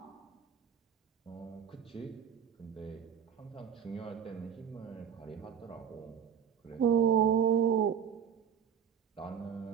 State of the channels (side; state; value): left; quieter; 8.2 dB